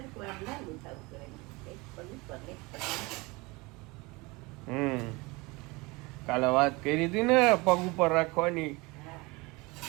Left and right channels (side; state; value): left; quieter; 24.7 dB